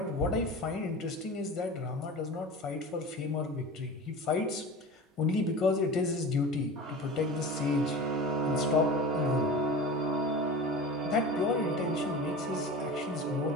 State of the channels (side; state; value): both; normal; correlation 0.34